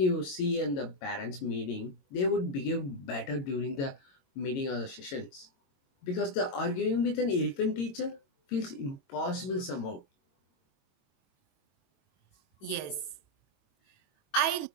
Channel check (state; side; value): late; right; 22 ms